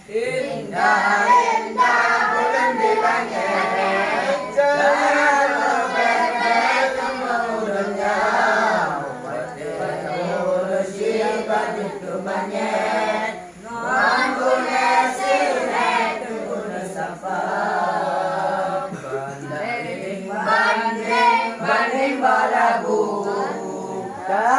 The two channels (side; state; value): both; identical; correlation 1.00